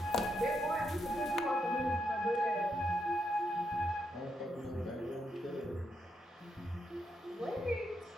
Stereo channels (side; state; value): both; normal; correlation 0.80